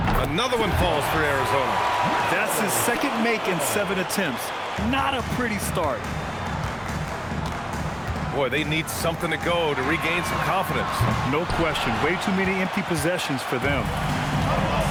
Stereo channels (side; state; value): both; identical; correlation 1.00